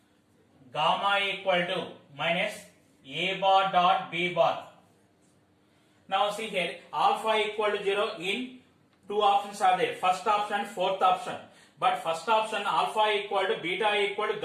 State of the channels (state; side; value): identical; both; correlation 1.00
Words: gamma equal to minus A bar dot B bar. Now see here, alpha equal to 0 in two options are there, first option and fourth option. But first option alpha equal to beta equal to